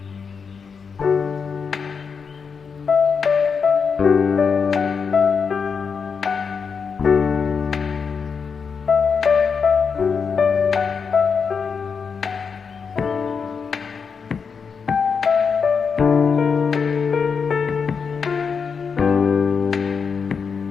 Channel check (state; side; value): quieter; right; 5.9 dB